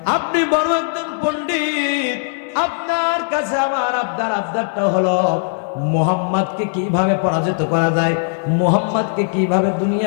আপনি বড় একজন পণ্ডিত, আপনার কাছে আমার আবদারটা হলো মুহাম্মদকে কিভাবে পরাজিত করা যায়, মুহাম্মদকে কিভাবে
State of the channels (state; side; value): silent; right; digital silence